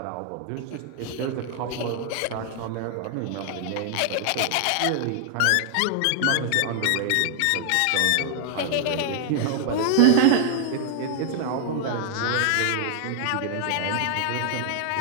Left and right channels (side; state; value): both; different; correlation 0.00